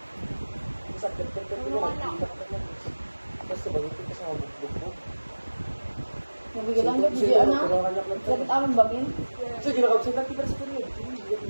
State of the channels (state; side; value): inverted; both; correlation -1.00